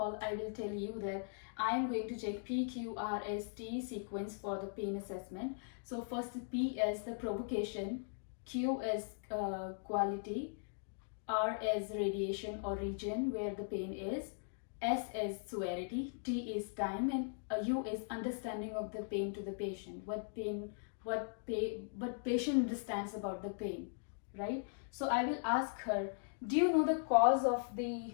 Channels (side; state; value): right; silent; digital silence